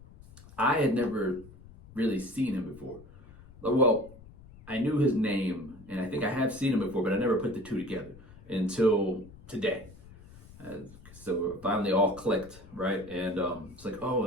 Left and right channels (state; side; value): noise; left; rumble, 20 dB below the sound